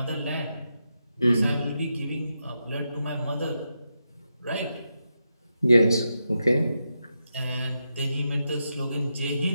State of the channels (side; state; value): both; inverted; correlation -0.86